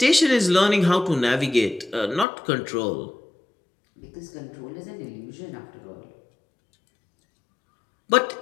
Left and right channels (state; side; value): drops out; right; at 2.2 s